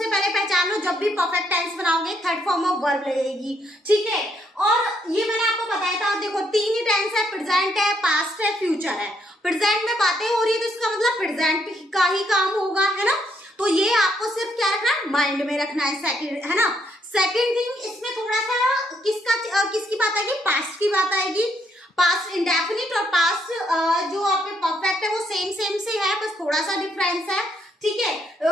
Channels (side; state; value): both; normal; correlation 0.73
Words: पहले पहचान लो, जब भी परफेक्ट टेंस बनाओगे थर्ड फॉर्म ऑफ वर्ब लगेगी। ठीक है, और ये मैंने आपको बताया था। देखो, तीन ही टेंस है, प्रेजेंट है, पास्ट है, फ्यूचर है। प्रेजेंट में बातें हो रही है तो इसका मतलब प्रेजेंट का ही काम होगा, है ना। तो ये आपको सिर्फ क्या रखना है, माइंड में रखना है। सेकंड, है ना। सेकंड थिंग, इसमें थोड़ा सा किसकी बात आएगी? पास्ट की बात आएगी। पास्ट इंडेफिनिट और पास्ट जो आपके परफेक्ट है वो सेम से है, बस थोड़ा सा डिफरेंस है। ठीक है,